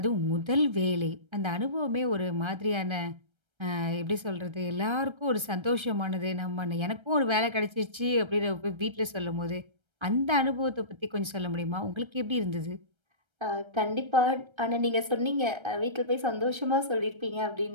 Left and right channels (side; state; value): left; late; 1.3 ms